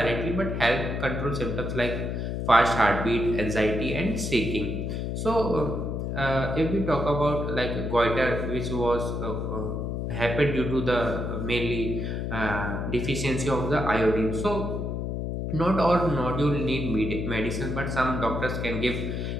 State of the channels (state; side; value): noise; left; hum, 2 dB below the sound